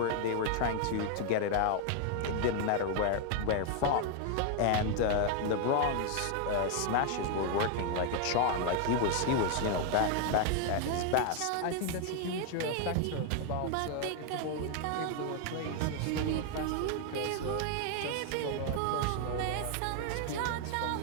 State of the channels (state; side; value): different; both; correlation 0.00